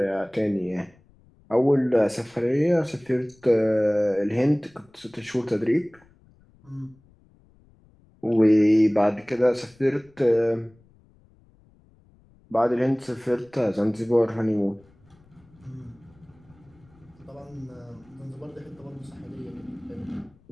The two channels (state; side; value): noise; left; rumble, 30 dB below the sound